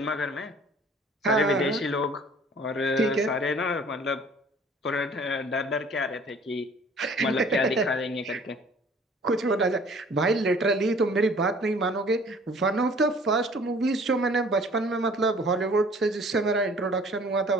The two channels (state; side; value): normal; both; correlation 0.52